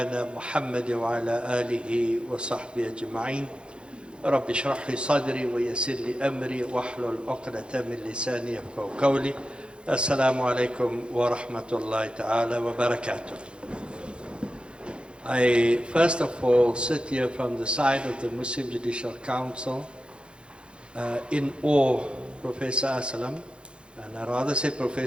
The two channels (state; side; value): late; left; 0.055 ms